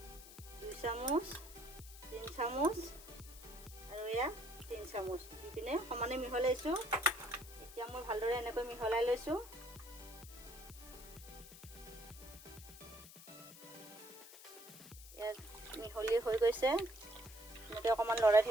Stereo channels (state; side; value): noise; left; hiss, 17 dB below the sound